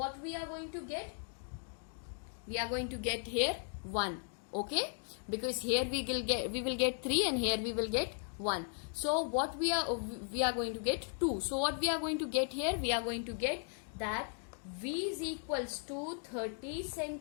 we are going to get? We are going to get here 1. Okay, because here we will get 3 and here we will get 1. So what we are going to get 2. So what we are going to get here? We are going to get that V is equals to 30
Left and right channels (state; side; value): silent; right; 53 dB below the other